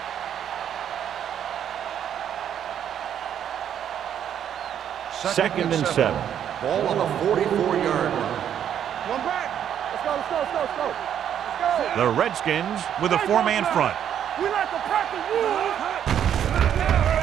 Second and 7. Ball on the 44-yard line. One back. Let's go, let's go, let's go, let's go. Let's go. The Redskins with a 4-man front. We like to practice rules.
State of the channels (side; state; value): left; quieter; 9.5 dB